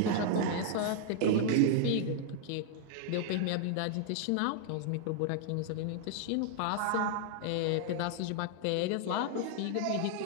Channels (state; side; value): different; both; correlation 0.00